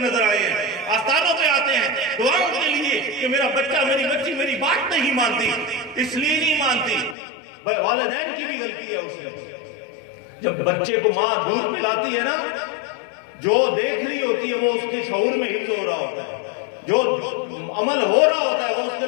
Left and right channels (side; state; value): right; drops out; at 7.2 s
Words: آئے ہیں. آستانوں پہ آتے ہیں دعاؤں کے لیے کہ میرا بچہ میری بچی میری بات نہیں مانتی, اس لیے نہیں مانتی. والدین کی بھی غلطی ہے اس میں. جب بچے کو ماں دودھ پلاتی ہے نا, جو دیکھ رہی ہوتی ہے وہ اس کے شعور میں حفظ ہو رہا ہوتا ہے, جو عمل ہو رہا ہوتا ہے وہ اس کے